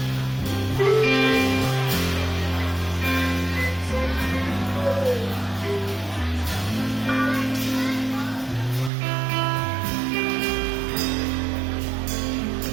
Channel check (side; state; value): left; drops out; at 8.9 s